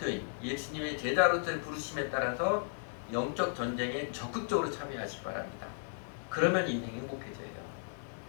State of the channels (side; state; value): right; silent; digital silence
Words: 예수님의 제자로서의 부르심에 따라서 영적 전쟁에 적극적으로 참여하시기 바랍니다. 그러면 인생이 행복해져요.